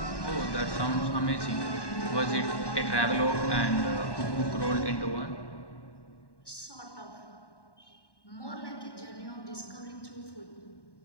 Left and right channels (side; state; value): right; late; 1.1 ms